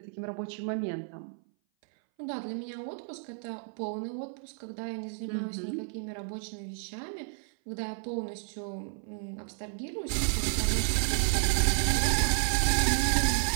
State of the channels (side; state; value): left; silent; 57 dB below the other